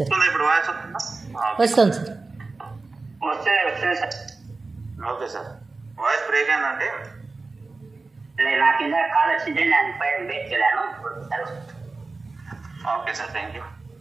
ఇప్పుడు వాయిస్ వస్తుంది సార్. వస్తుంది sir. Okay sir. Voice break అయిందంటే నా కింద కాల్ వచ్చింటే నేను పైన బ్రేక్ చేయలేను. Okay sir, thank you.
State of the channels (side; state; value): left; quieter; 3.7 dB